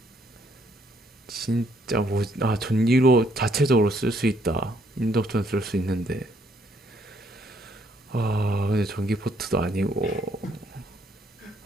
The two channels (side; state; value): both; normal; correlation 0.69